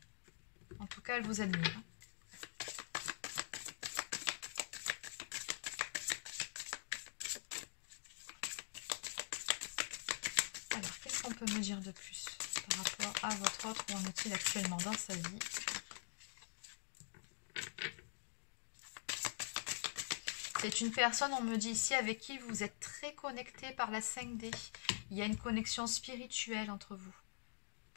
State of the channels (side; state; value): right; silent; digital silence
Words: En tout cas, elle vous admire. Alors, qu'est-ce qu'on peut me dire de plus par rapport à votre autre? Où en est-il actuellement dans sa vie? C'est une personne, on me dit ici, avec qui vous êtes très connecté par la 5D. Il y a une connexion spirituelle entre vous.